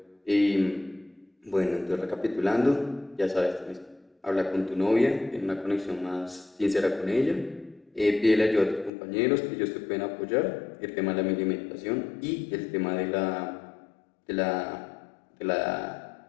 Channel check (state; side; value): drops out; right; at 8.9 s